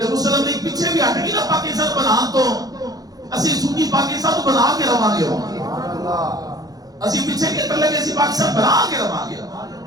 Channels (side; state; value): left; late; 0.18 ms